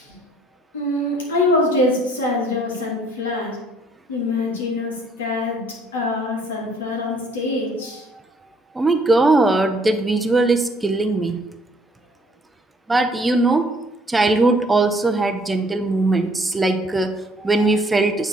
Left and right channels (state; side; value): normal; both; correlation 0.62